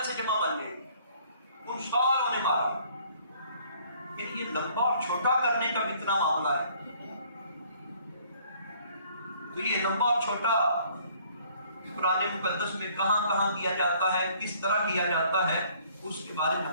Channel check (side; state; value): both; inverted; correlation -0.59